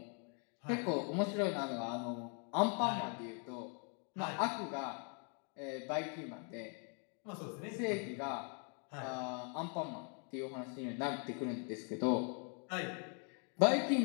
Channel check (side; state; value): right; quieter; 39.5 dB